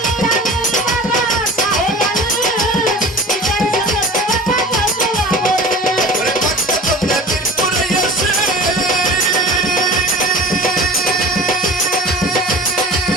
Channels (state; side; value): normal; both; correlation 0.38